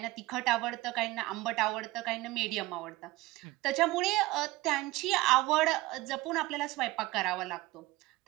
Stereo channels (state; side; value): quieter; left; 19.4 dB